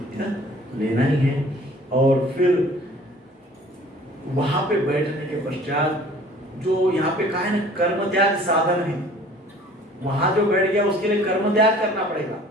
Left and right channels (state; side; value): normal; both; correlation 0.51